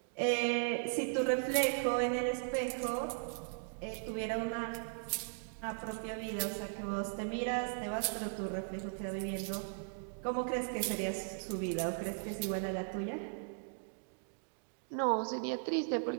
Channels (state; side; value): silent; left; digital silence